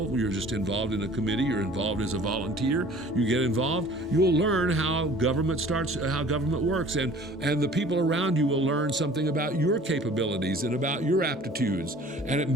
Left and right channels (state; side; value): normal; both; correlation 0.48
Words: you're just involved in a committee, you're involved as a volunteer, you get involved, you'll learn how government works, and the people around you will learn something about your capabilities and about your aptitudes. And it